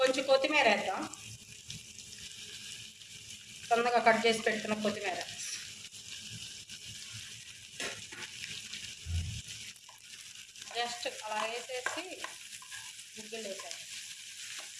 కొత్తిమీర వేద్దాం, సన్నగా కట్ చేసి పెట్టుకున్న కొత్తిమీర. జస్ట్ అలా వేసేసి గుగ్గిళ్ళు వేసాను.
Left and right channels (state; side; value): identical; both; correlation 1.00